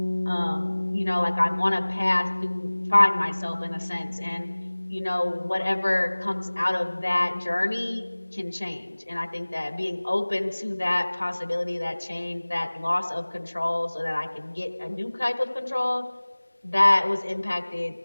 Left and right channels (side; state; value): both; inverted; correlation -1.00